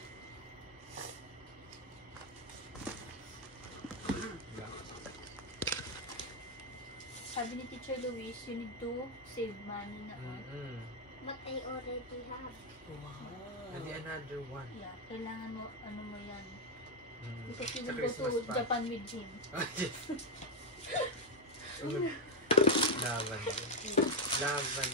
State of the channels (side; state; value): both; normal; correlation 0.04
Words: Sabi ni Teacher Luis, you need to save money na on. But I already have. Wow. And another one. Yeah, kailangan mo, ano mo yan. Because you Sa will go Christmas to pa. Japan with him. Lavender.